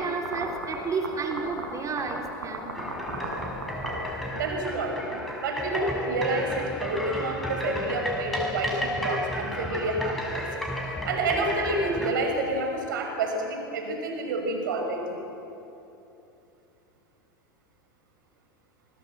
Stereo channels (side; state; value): both; normal; correlation 0.22